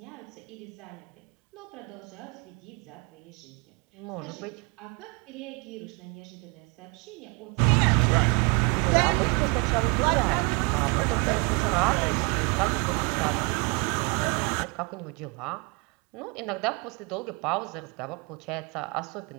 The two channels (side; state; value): left; quieter; 31.1 dB